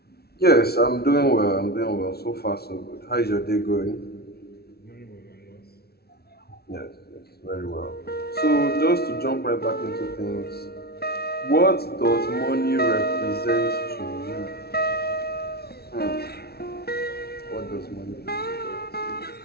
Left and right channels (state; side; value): late; right; 0.46 ms